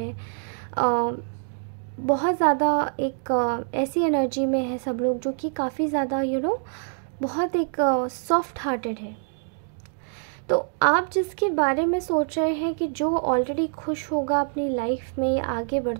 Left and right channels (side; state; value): left; silent; digital silence